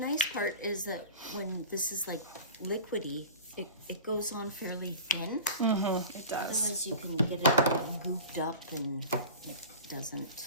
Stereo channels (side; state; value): both; inverted; correlation -0.36